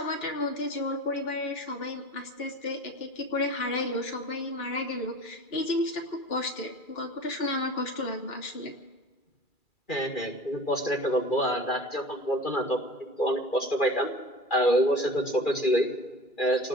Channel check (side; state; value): right; late; 2.3 ms